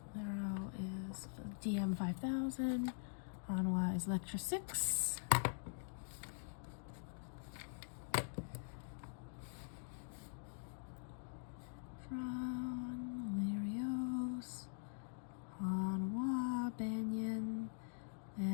Lero is DM 5000. Hanwha is Lectra 6. Lerios, Hanwha, Banyan,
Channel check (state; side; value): silent; right; digital silence